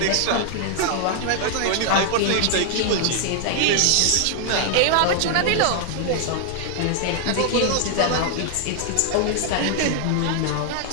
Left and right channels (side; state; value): both; different; correlation 0.00